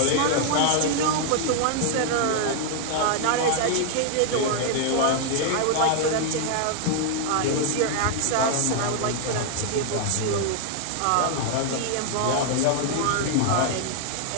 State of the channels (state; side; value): different; both; correlation 0.00